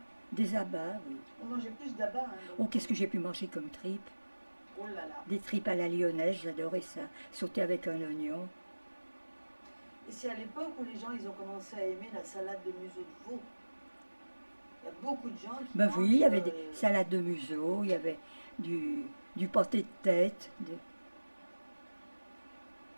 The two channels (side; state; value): both; inverted; correlation -1.00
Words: Des abats, oui. On mangeait plus d'abats. Hein, donc. Oh, qu'est-ce que j'ai pu manger comme tripes? Oh là là. Des tripes à la lyonnaise, j'adorais ça. Sauter avec un oignon. Et c'est à l'époque où les gens ils ont commencé à aimer la salade de museau de veau. Il y a beaucoup de gens qui Ben mangent, oui, il y avait des salades de museau, il y avait du pâté de tête.